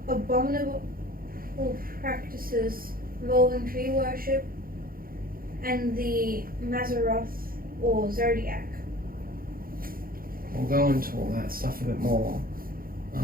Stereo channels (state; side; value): late; left; 0.42 ms